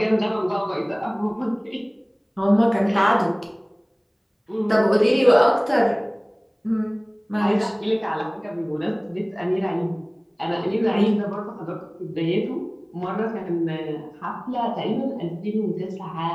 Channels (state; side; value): identical; both; correlation 1.00